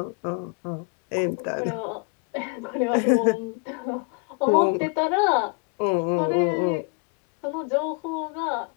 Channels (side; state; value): right; quieter; 37.5 dB